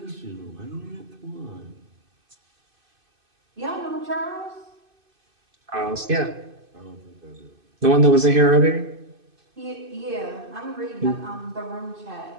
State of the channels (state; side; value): late; left; 2.6 ms